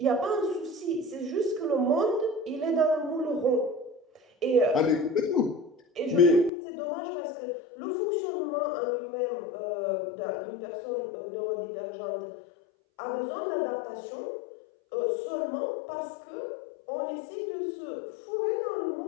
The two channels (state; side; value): drops out; right; at 6.5 s